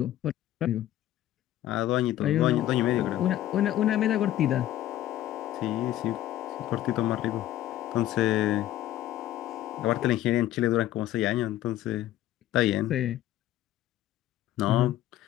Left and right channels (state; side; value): quieter; right; 13.5 dB